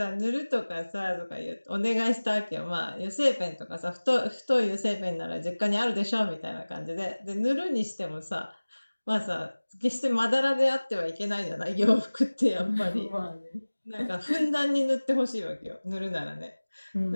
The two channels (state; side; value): inverted; both; correlation -1.00